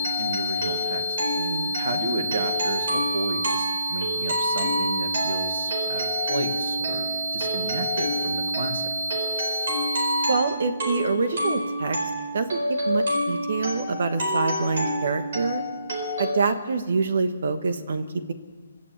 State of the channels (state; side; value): inverted; both; correlation -0.74